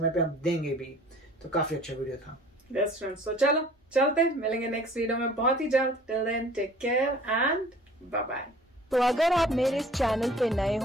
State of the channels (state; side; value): normal; both; correlation 0.49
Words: पे हम देंगे भी। तो काफी अच्छा वीडियो था। बेस्ट फ्रेंड्स, तो चलो चलते, मिलेंगे नेक्स्ट वीडियो में बहुत ही जल्द। Till then take care and bye bye. तो अगर आप मेरे इस चैनल पे नए